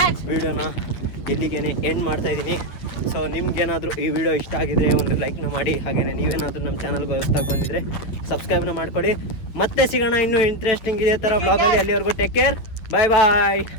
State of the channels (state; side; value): late; right; 9.2 ms